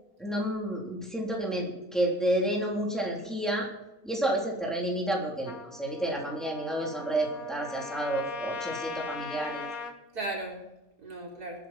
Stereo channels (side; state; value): both; normal; correlation 0.47